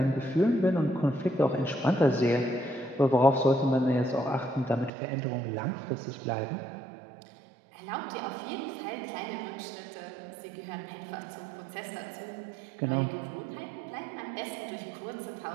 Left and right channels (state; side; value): drops out; left; at 4.9 s